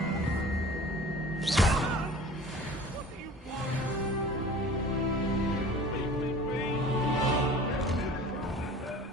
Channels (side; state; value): both; normal; correlation 0.43